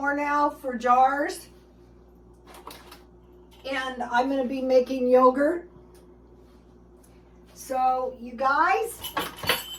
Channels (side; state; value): both; identical; correlation 1.00